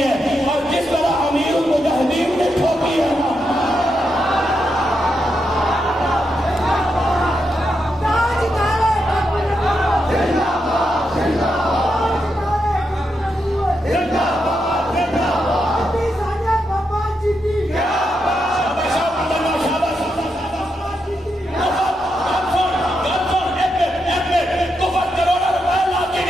ہے، اور جس طرح امیر المجاہدین نے ٹھوکی ہے نا،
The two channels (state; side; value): normal; both; correlation 0.84